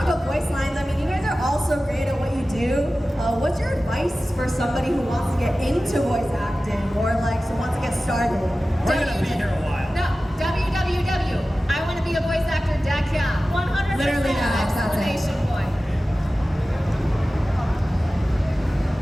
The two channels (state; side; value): normal; both; correlation 0.95